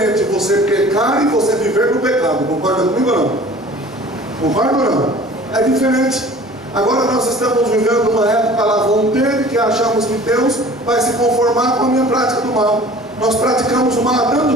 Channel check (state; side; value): normal; both; correlation 0.46